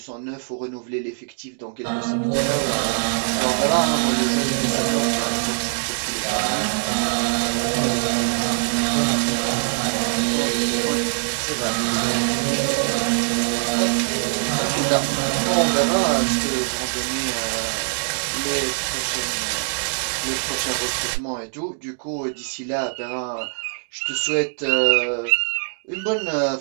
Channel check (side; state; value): left; silent; digital silence